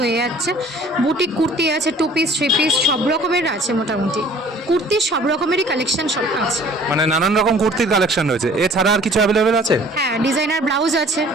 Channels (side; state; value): both; normal; correlation 0.52